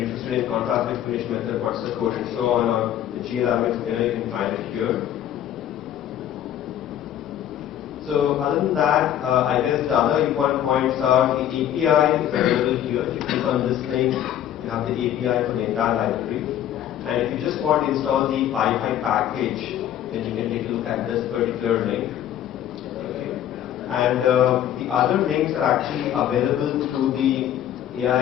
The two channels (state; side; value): quieter; right; 11.1 dB